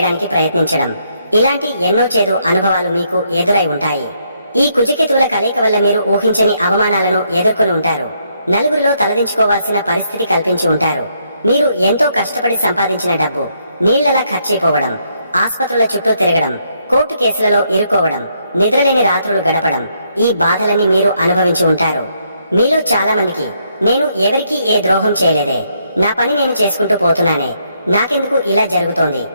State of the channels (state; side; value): inverted; both; correlation -0.74